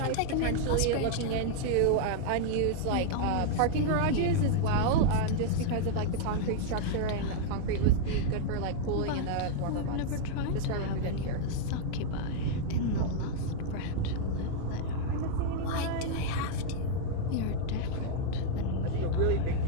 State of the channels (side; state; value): both; different; correlation -0.01